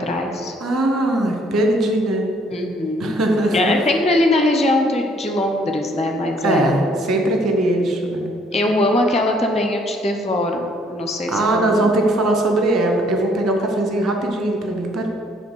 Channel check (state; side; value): normal; both; correlation 0.64